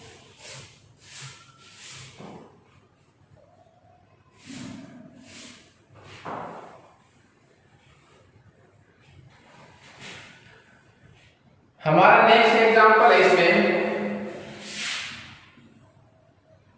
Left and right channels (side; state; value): both; identical; correlation 1.00